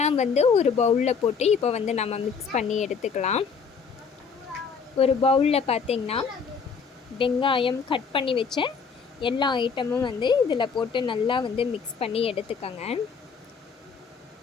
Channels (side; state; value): right; quieter; 5.8 dB